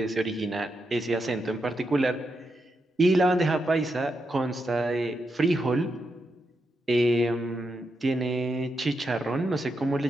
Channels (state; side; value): normal; both; correlation 0.84